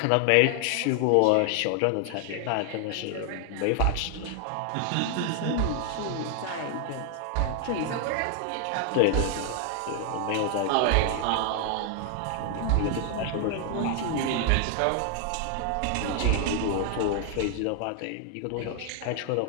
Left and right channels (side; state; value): both; different; correlation 0.00